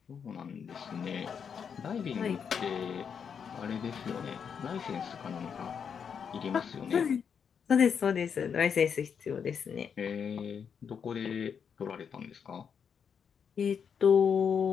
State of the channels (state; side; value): quieter; right; 7.0 dB